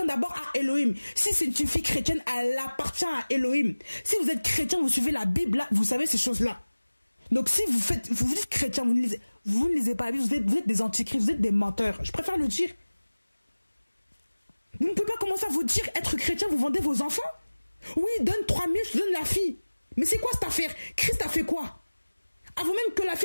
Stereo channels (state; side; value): inverted; both; correlation -1.00